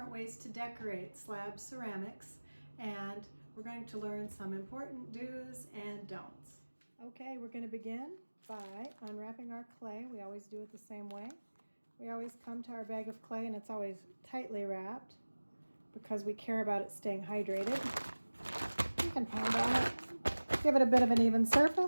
ways to decorate slab ceramics, and we're going to learn some important do's and don'ts. Okay, we're going to begin by unwrapping our clay. We always do it the same way. We always come to our bag of clay and it's always tightly wrapped because we care about it staying hydrated. You can pound on it. Give it a bit of an even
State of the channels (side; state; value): both; inverted; correlation -1.00